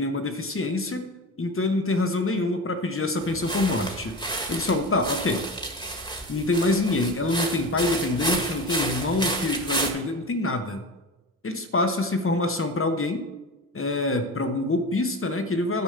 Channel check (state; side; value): normal; both; correlation 0.29